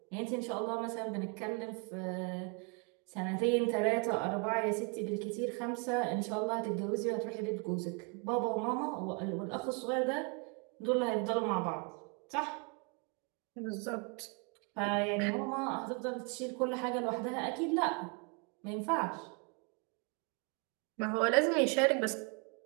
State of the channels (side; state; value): left; quieter; 34.1 dB